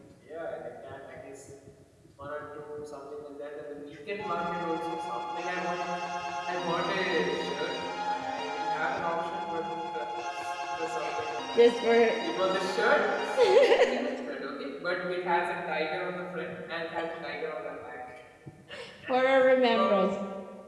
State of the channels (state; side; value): identical; both; correlation 1.00